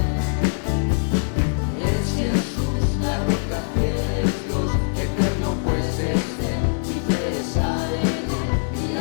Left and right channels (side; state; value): right; silent; digital silence